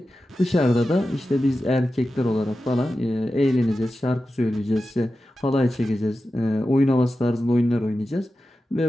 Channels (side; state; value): both; normal; correlation 0.92